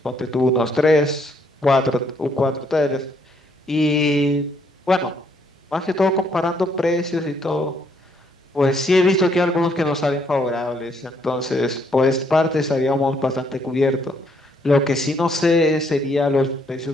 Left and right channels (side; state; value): both; normal; correlation 0.70